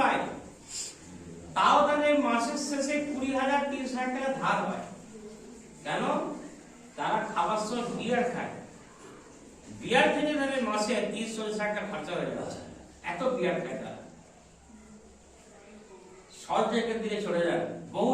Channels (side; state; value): both; identical; correlation 1.00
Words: তাও তাদের মাসের শেষে 20,000-30,000 টাকা ধার হয়। কেন? তারা খাবার সময় বিয়ার খায়, বিয়ার থেকে তাদের মাসে 30-40 টাকা খরচা হয়ে যাচ্ছে, এত বিয়ার খায় তারা। সব জায়গার দিকে চলে যান, বহু